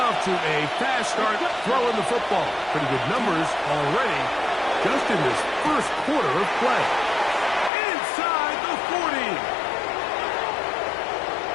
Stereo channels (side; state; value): right; drops out; at 7.7 s